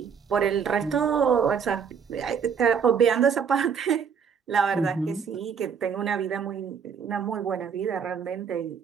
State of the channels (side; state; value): left; quieter; 6.9 dB